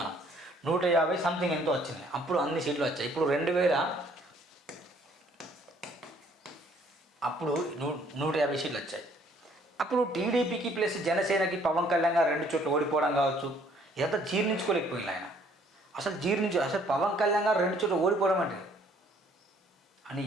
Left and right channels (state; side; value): normal; both; correlation 0.62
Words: 150 సంథింగ్ ఎంతో వచ్చినాయి. అప్పుడు అన్ని సీట్లు వచ్చాయి. ఇప్పుడు 150 సీట్లు వచ్చాయి. అప్పుడు టీడీపీకి ప్లస్ జనసేనకి పవన్ కళ్యాణ్ గారు 2 చోట్ల ఓడిపోవడం కావచ్చు, ఇదంతా జీర్ణించుకోలేకపోయింది ఆయన. అసలు పవన్ కళ్యాణ్ గారు 2 చోట్ల ఓడిపోవడం అంటే అని